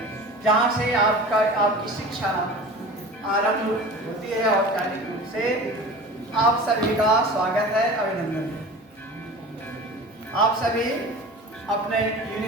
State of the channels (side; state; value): both; normal; correlation 0.37